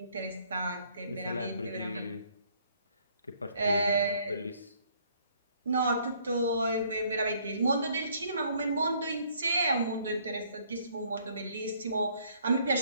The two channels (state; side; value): inverted; both; correlation -0.64